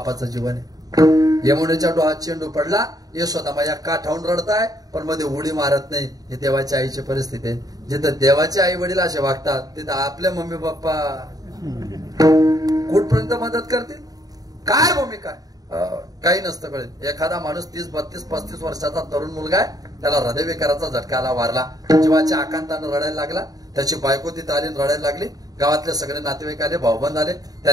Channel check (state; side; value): late; left; 0.18 ms